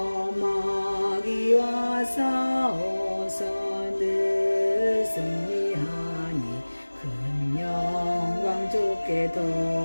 마귀와 싸워서 늘 승리하니 큰 영광 주께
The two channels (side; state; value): both; inverted; correlation -1.00